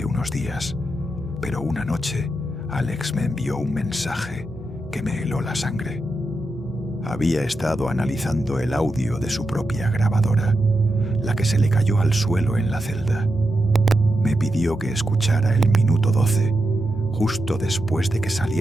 unos días, pero una noche Alex me envió un mensaje que me heló la sangre. Había estado analizando el audio de su propia grabadora, la que se le cayó al suelo en la celda. Me pidió que escuchara el minuto 12, justo después de que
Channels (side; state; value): both; normal; correlation 0.87